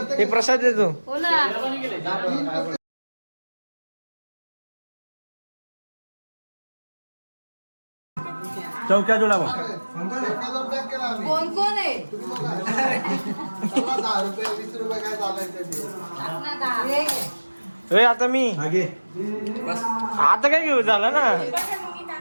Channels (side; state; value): both; inverted; correlation -1.00